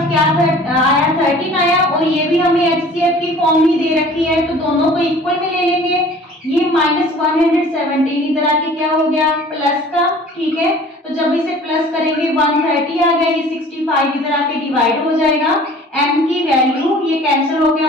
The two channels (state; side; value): normal; both; correlation 0.48